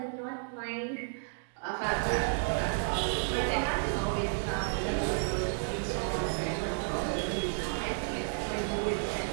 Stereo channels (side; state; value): left; silent; digital silence